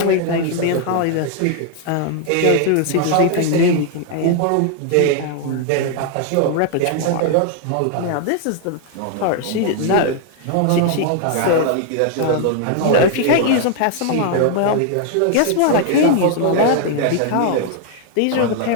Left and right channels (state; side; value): different; both; correlation 0.00